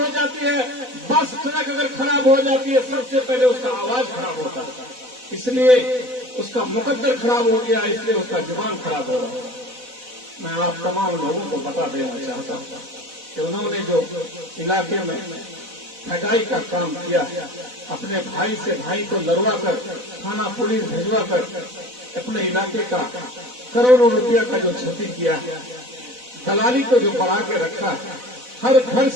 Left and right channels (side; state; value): left; late; 4.0 ms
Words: जाती है, बस ट्रक अगर खराब हो जाती है, सबसे पहले उसका आवाज खराब होता है। इसलिए उसका मुकद्दर खराब हो गया, इसलिए उसका जुबान खराब हो रहा है। मैं आप तमाम लोगों को बता देना चाहता हूँ कि उन्होंने जो इलाके में ठगाई का काम किया, अपने भाई से भाई को लड़वा कर, थाना पुलिस भिजवा कर अपने इलाके का करोड़ों रुपया का जो क्षति किया, दलाली को जो बढ़ा के रखा, हर घर